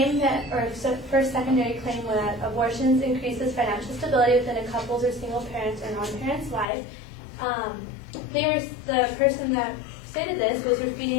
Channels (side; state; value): right; drops out; at 6.7 s